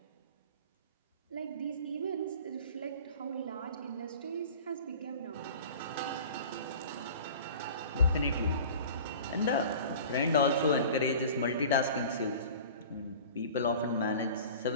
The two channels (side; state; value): both; inverted; correlation -0.41